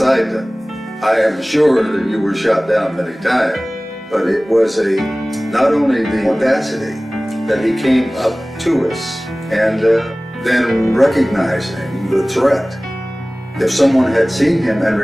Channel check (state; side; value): normal; both; correlation 0.98